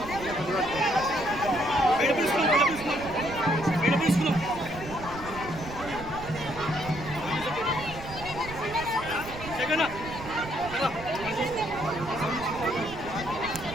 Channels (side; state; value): right; noise; rumble, 13 dB below the sound